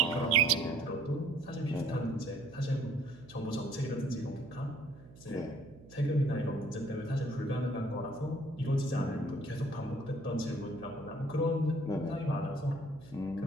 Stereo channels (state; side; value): noise; right; hum, 20 dB below the sound